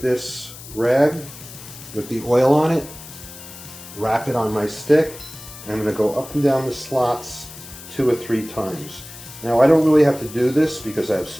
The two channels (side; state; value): left; noise; hiss, 15 dB below the sound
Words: this rag with the oil on it, wrap it on my stick, and I'm going to go up and down the slots 2 or 3 times. Now I don't really have to do this because